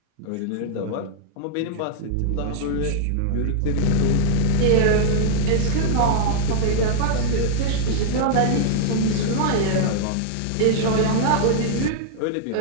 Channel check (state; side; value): different; both; correlation -0.01